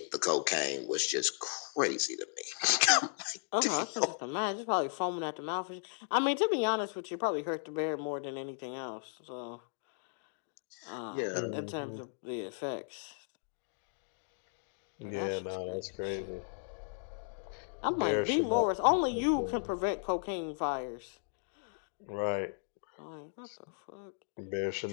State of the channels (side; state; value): right; silent; digital silence